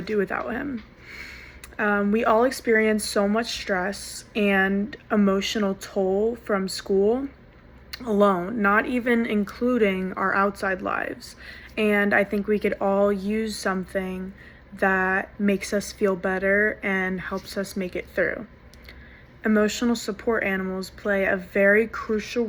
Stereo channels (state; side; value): identical; both; correlation 1.00